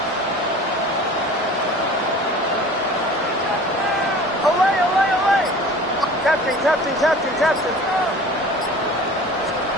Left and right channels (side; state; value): both; normal; correlation 0.42